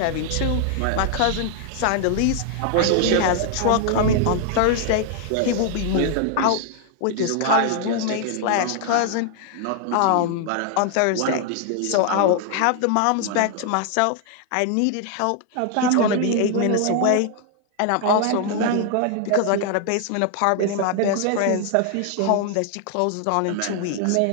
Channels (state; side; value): different; both; correlation 0.00